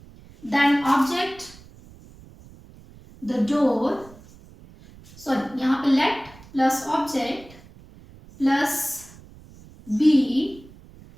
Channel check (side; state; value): right; noise; rumble, 22 dB below the sound